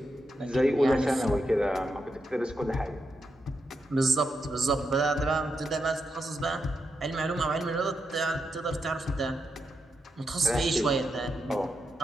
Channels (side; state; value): both; normal; correlation 0.85